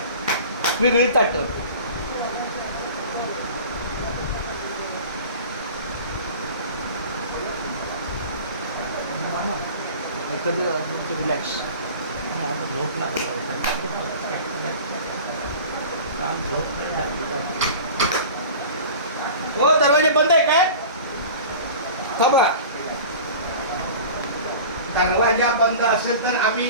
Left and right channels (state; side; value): inverted; both; correlation -0.39